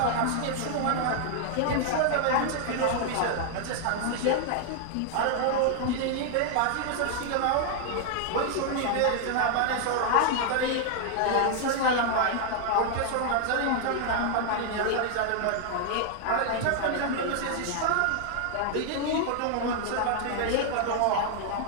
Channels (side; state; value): both; different; correlation 0.00